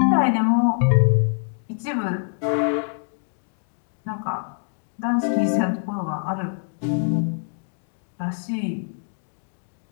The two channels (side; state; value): right; silent; 56 dB below the other